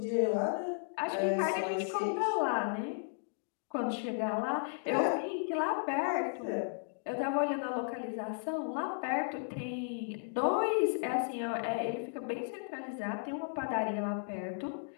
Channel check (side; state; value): right; silent; digital silence